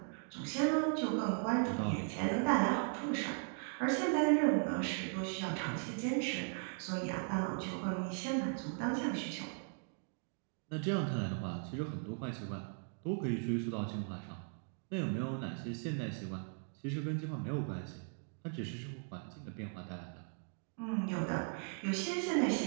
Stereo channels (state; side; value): silent; left; 52 dB below the other